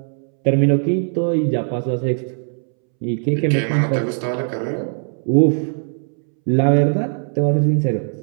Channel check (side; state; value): left; silent; 66 dB below the other